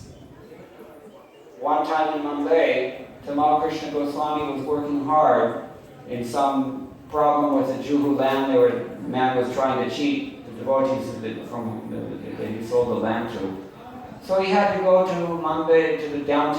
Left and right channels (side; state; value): both; identical; correlation 1.00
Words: One time in Mumbai, Tamal Krishna Goswami was working hard in some problem with the Juhu land. The man was trying to cheat the devotees that he sold the land to. So he had to go to Mumbai, to the